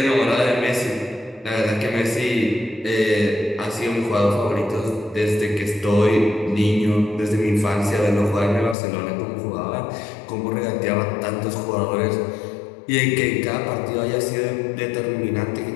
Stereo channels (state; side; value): drops out; right; at 8.8 s